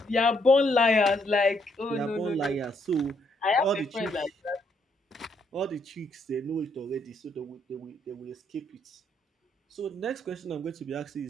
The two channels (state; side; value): normal; both; correlation 0.72